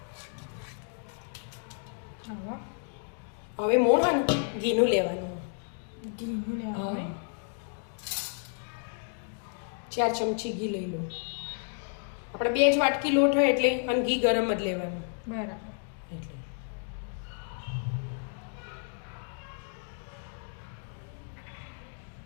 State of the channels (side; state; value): right; silent; 57 dB below the other